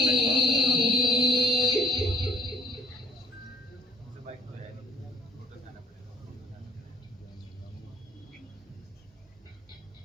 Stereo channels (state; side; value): normal; both; correlation 0.56